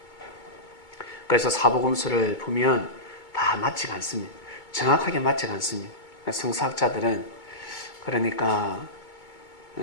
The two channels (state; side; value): late; right; 2.2 ms